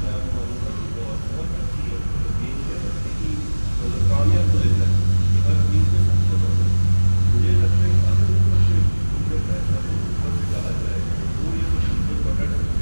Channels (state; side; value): inverted; both; correlation -1.00